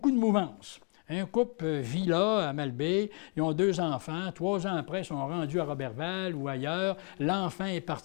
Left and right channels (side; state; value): right; quieter; 34.1 dB